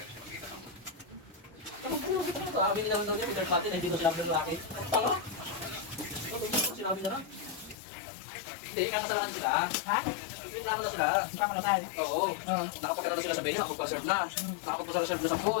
sabi nila naman yung third party na hindi ko sinabi ng lalaki. Tanga? Sinabi na lang. Hindi, kakasalanan sila. Ha? Reklamo na sila. Hindi pa ako nasal. Oo. Nakapagkala na sila sa menu, nakapag-serve na. Nakapag-serve na sa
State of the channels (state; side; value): drops out; right; at 7.8 s